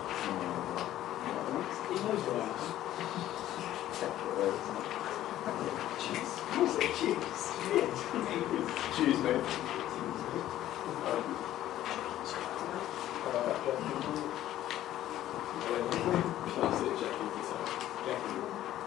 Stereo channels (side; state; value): right; quieter; 13.2 dB